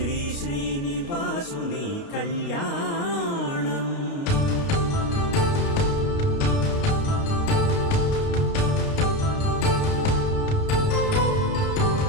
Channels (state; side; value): late; right; 29 ms